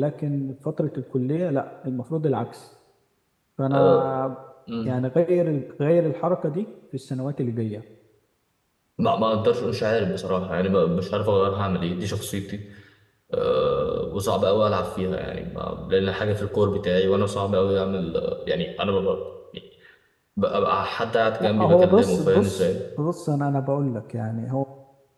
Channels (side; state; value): both; identical; correlation 1.00